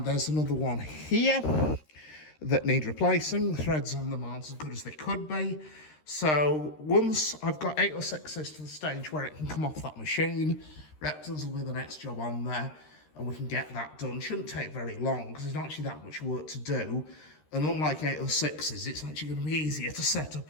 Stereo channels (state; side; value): late; right; 13 ms